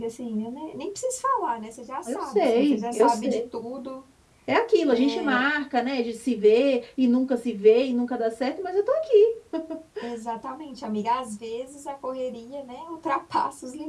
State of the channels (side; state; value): both; identical; correlation 1.00